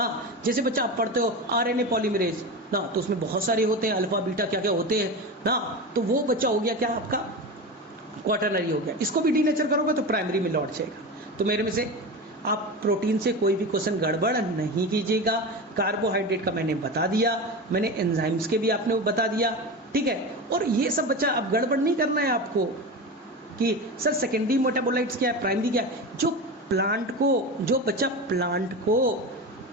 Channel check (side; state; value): both; normal; correlation 0.25